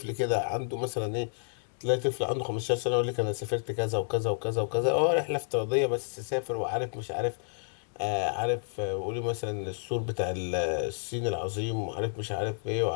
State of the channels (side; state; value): right; silent; digital silence